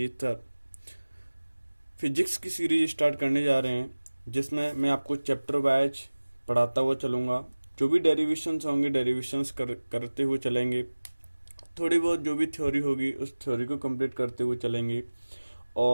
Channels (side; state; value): both; inverted; correlation -1.00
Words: सर फिजिक्स की सीरीज स्टार्ट करने जा रहे हैं, जिसमें मैं आपको चैप्टर वाइज पढ़ाता हुआ चलूँगा। जो भी डेरिवेशंस होंगे, डेरिवेशंस करते हुए चलेंगे। थोड़ी बहुत जो भी थ्योरी होगी, उस थ्योरी को कंप्लीट करते हुए चलेंगे।